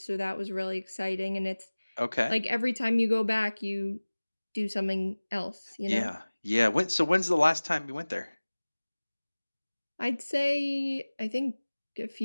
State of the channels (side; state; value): both; inverted; correlation -1.00